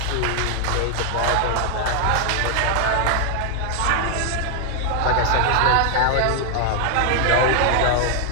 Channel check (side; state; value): both; different; correlation 0.00